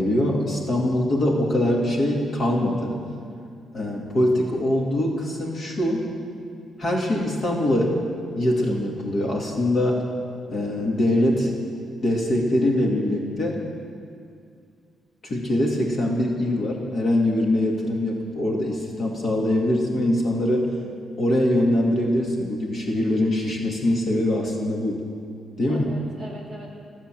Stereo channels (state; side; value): normal; both; correlation 0.83